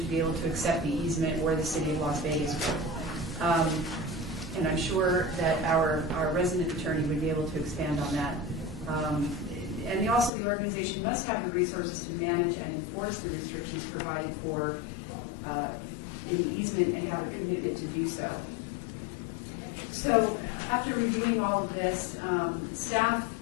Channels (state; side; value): drops out; right; at 10.3 s